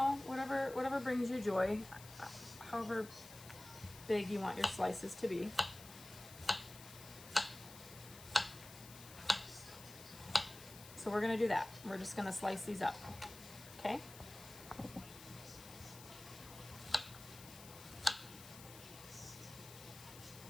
whatever brings you joy, however big you want your slices to be. So we're gonna do that. We're just gonna slice these up, okay?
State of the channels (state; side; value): noise; left; hiss, 16 dB below the sound